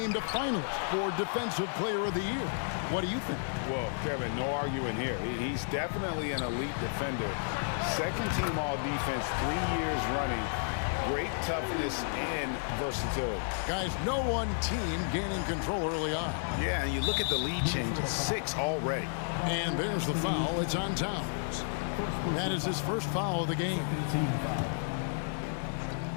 a finalist for Defensive Player of the Year. What do you think? Well, Kevin, no arguing here. He's definitely an elite defender. Second team all-defense 3 years running. Great toughness and versatility. Guys, no one team gaining control early on. Yeah, and you look at the lead changes, 6 already. And there's the foul. It's on Towns. That is his first foul of the game.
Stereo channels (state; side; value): silent; right; digital silence